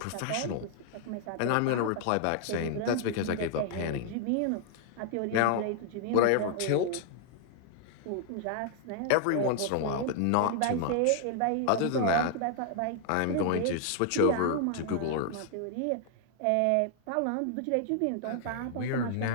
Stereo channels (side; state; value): both; different; correlation 0.00